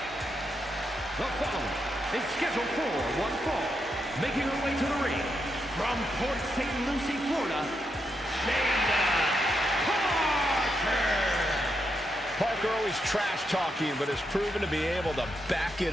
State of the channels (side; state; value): both; normal; correlation 0.83